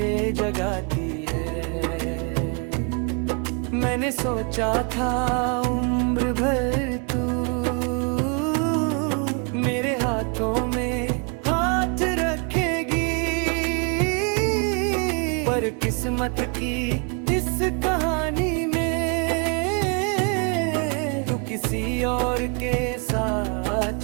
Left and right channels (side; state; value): left; quieter; 35.1 dB